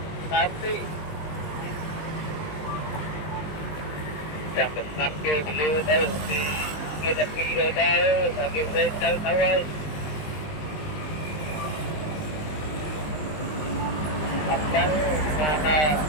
đàn tí chạm được năm kia đưa đây thì người ta đi rồi đây là kia về tới đâu ơi tập lắm mà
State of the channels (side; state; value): right; late; 20 ms